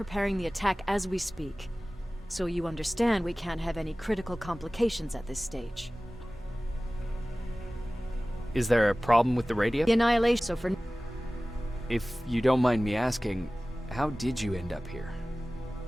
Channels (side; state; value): both; normal; correlation 0.98